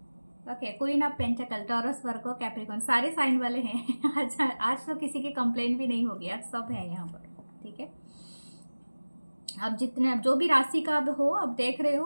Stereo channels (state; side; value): inverted; both; correlation -1.00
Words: Okay, queen of pentacle, Taurus, Virgo, Capricorn, सारे sign वाले हैं। आज तो किसी की complaint भी नहीं होगी, आज सब है यहाँ पर, ठीक है। अब जितने, अब जो भी राशि का अब हो, अब देख रहे